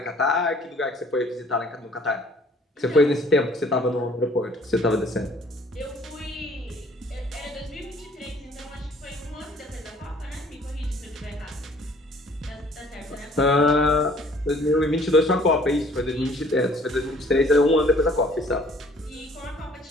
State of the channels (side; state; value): both; normal; correlation 0.56